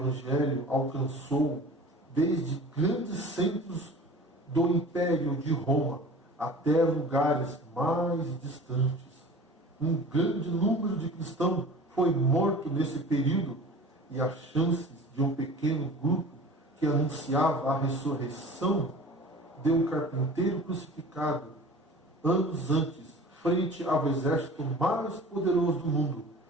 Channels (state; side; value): normal; both; correlation 0.41